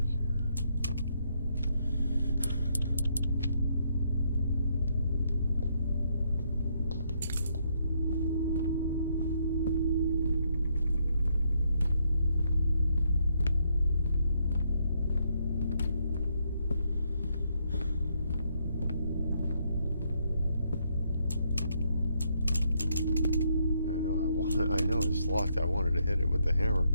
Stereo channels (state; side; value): inverted; both; correlation -0.75